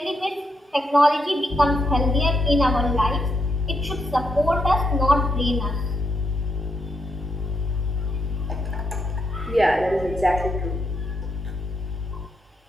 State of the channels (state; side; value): normal; both; correlation 0.80